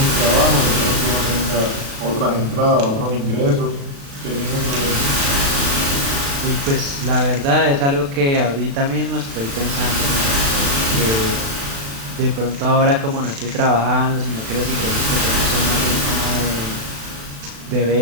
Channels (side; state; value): left; late; 36 ms